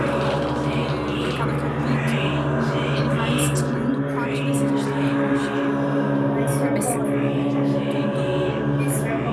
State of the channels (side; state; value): both; identical; correlation 1.00